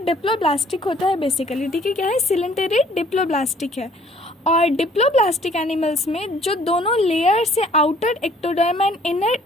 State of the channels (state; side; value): normal; both; correlation 0.58